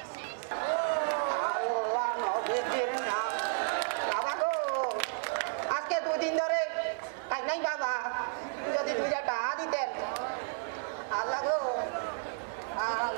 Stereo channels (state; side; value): silent; left; digital silence